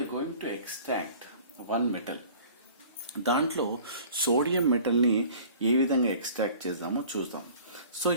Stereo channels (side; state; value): both; inverted; correlation -0.47